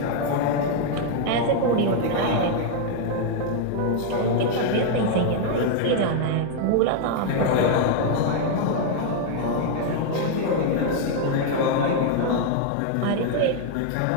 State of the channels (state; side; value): different; both; correlation 0.00